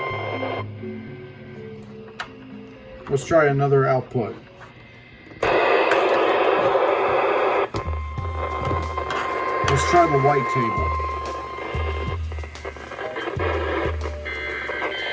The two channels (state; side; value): identical; both; correlation 1.00